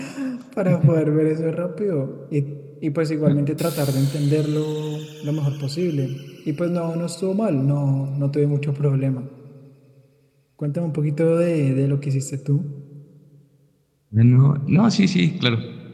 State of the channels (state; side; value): identical; both; correlation 1.00